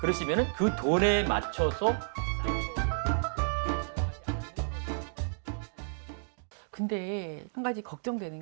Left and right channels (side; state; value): left; silent; digital silence